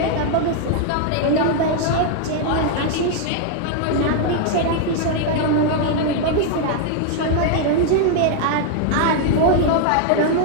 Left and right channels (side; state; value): both; different; correlation 0.00